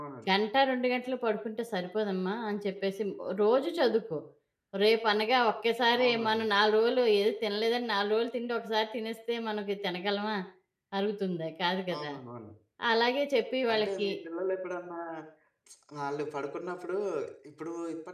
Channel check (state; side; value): identical; both; correlation 1.00